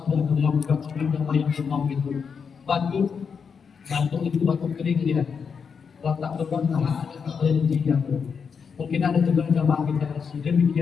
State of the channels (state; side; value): quieter; right; 6.2 dB